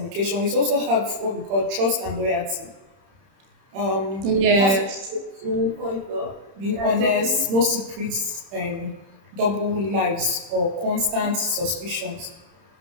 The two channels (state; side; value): late; left; 31 ms